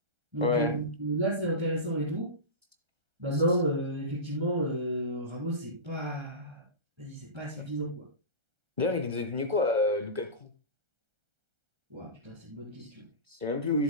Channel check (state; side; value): late; left; 1.3 ms